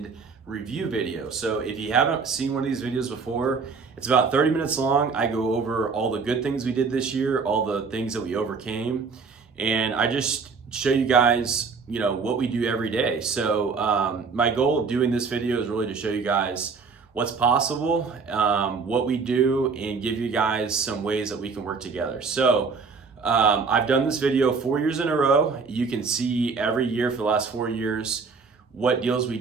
review video. So if you haven't seen one of these videos before, it's about 30 minutes long. I go over all the good things we did this year, all the things that we overcame, and I just show you guys, what we do every day. So my goal of doing this video is really to show you guys what's possible, what we do, and give you guys some ways that we can work together. So I've done this video 4 years in a row. You can see every year for the last 4 years what deals we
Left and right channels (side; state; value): left; quieter; 5.0 dB